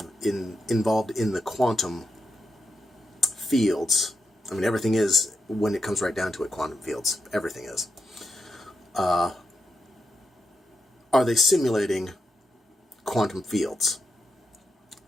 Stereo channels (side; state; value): both; normal; correlation 0.84